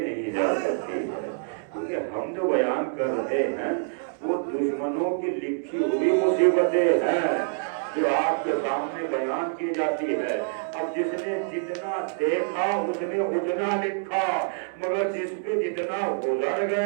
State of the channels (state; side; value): silent; left; 61 dB below the other